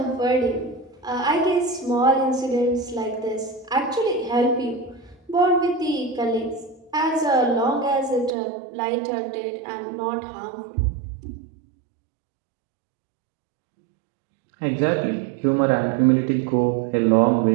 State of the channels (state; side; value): drops out; left; at 8.3 s